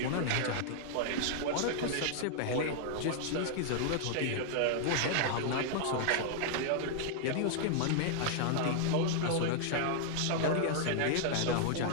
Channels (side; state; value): both; different; correlation -0.01